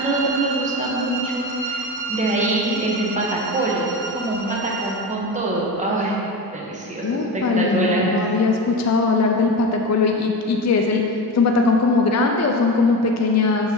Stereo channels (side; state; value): both; normal; correlation 0.24